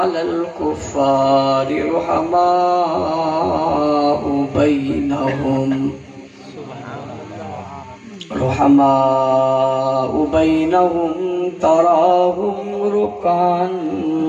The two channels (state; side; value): identical; both; correlation 1.00